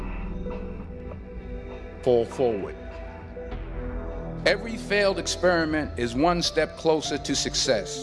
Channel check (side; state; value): both; identical; correlation 1.00